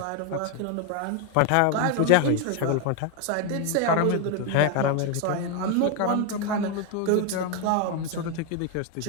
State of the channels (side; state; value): both; different; correlation 0.01